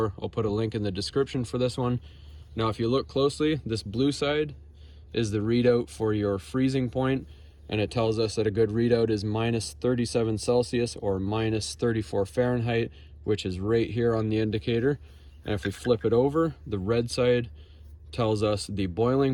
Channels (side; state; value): both; identical; correlation 1.00